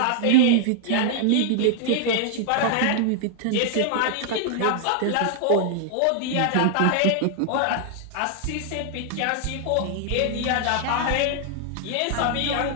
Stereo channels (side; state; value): both; different; correlation 0.00